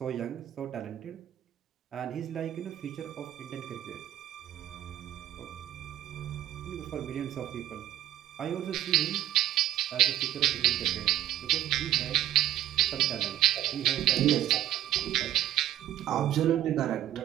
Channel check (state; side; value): quieter; left; 12.4 dB